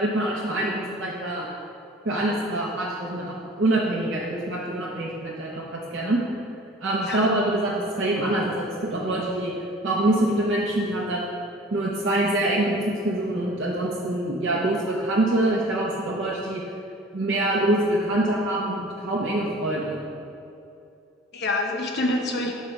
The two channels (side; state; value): both; normal; correlation 0.46